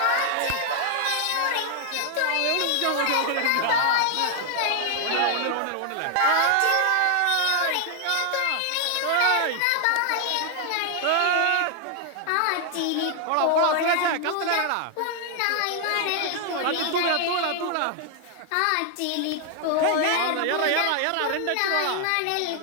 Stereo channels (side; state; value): both; different; correlation 0.00